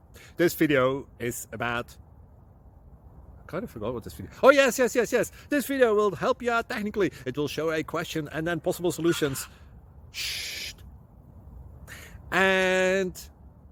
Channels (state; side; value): identical; both; correlation 1.00